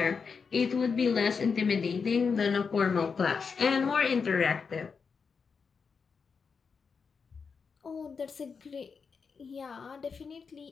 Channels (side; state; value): right; quieter; 5.5 dB